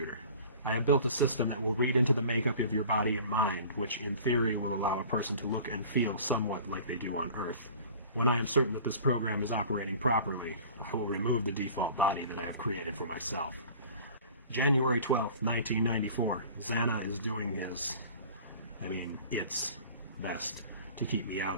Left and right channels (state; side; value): inverted; both; correlation -0.44